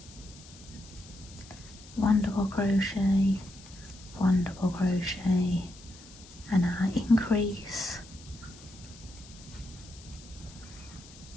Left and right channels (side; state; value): left; noise; hiss, 20 dB below the sound